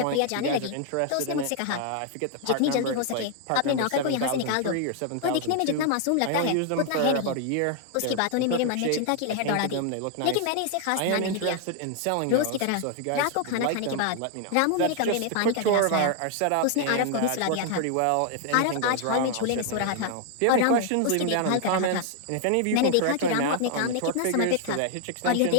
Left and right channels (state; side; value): different; both; correlation 0.00